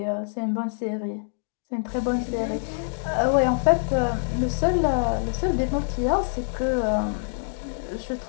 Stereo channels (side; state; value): right; silent; digital silence